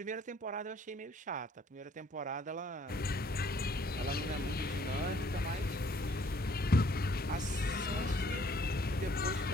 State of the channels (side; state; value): both; normal; correlation 0.62